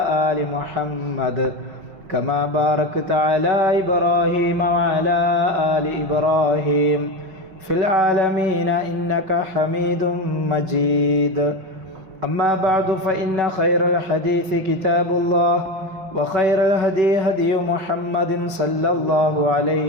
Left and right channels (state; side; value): late; left; 5.3 ms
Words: آل محمد كما باركت على إبراهيم وعلى آل إبراهيم في العالمين إنك حميد مجيد أما بعد فإن خير الحديث كتاب الله وخير الهدي هدي محمد صلى الله